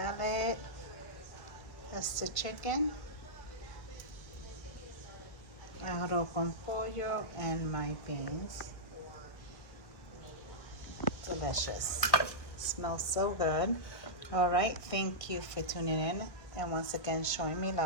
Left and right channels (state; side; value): late; right; 1.8 ms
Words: That's the chicken. Arroz con pollo and my beans. Delicious. Smells so good. All right, thank you for tuning in and once again showing me